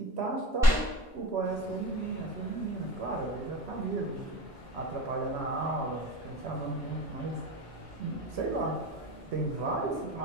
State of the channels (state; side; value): normal; both; correlation 0.32